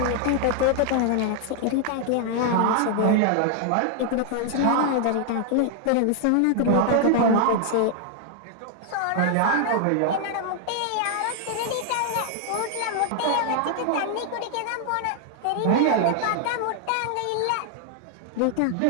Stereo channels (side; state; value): both; different; correlation 0.00